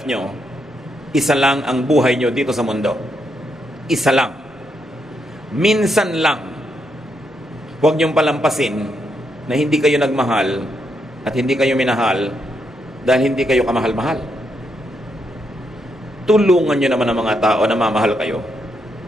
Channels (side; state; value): both; normal; correlation 0.79